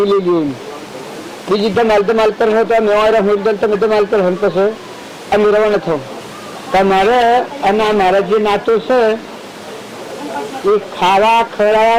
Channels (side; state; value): both; identical; correlation 1.00